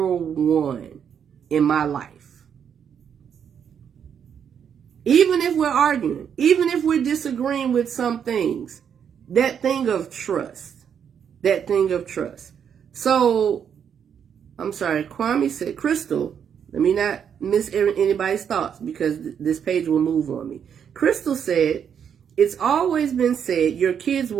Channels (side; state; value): left; quieter; 7.9 dB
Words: in my life. Even if we're arguing, even if we're disagreeing with some things, that thing of trust. So, I'm sorry, Kwame said, Crystal, let me not miss anybody's thoughts because this page will move on me. Crystal said, it's always been said your kids